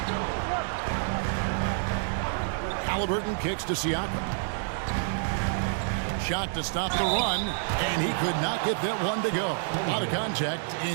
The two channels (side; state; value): left; silent; digital silence